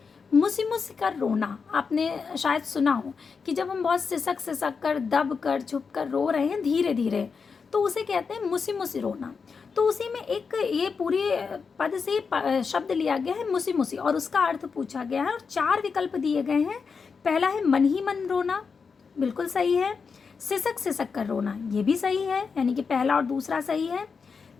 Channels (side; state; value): right; quieter; 5.4 dB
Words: मुसी मुसी कर रोना आपने शायद सुना हो कि जब हम बहुत सिसक कर, दब कर, छुप कर रो रहे हैं धीरे धीरे, तो उसे कहते हैं मुसी मुसी रोना। तो उसी में एक ये पूरे पद से शब्द लिया गया है मुसी मुसी और उसका अर्थ पूछा गया है और 4 विकल्प दिए गए हैं। पहला है मन ही मन रोना, बिल्कुल सही है। सिसक कर रोना, ये भी सही है, यानी कि पहला और दूसरा सही है।